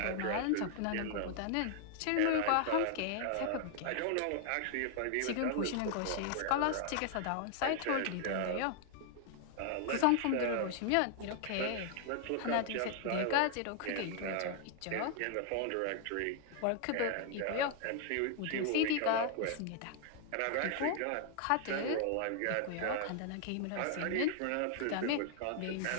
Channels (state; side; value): different; both; correlation 0.00